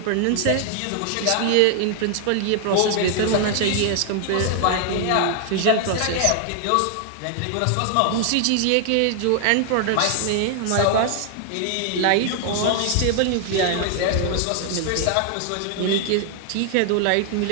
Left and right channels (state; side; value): different; both; correlation 0.00